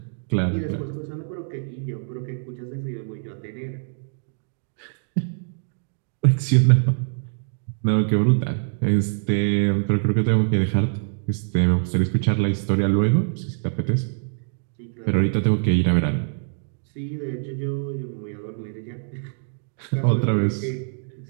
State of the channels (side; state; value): left; silent; digital silence